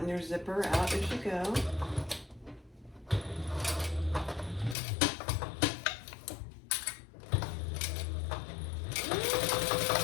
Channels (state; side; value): drops out; right; at 4.8 s